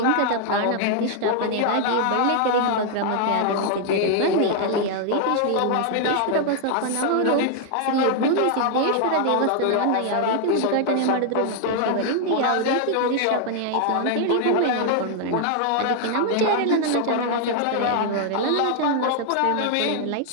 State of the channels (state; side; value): different; both; correlation 0.00